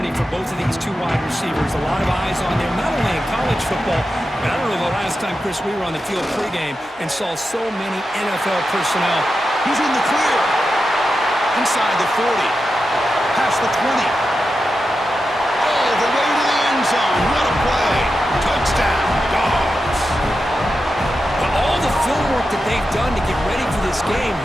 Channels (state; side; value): normal; both; correlation 0.90